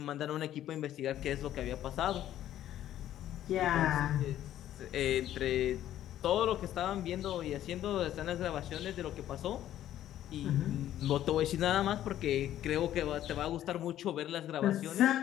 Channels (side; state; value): right; quieter; 12.2 dB